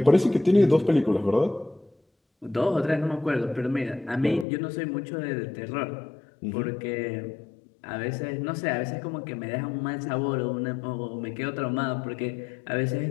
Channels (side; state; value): right; drops out; at 4.5 s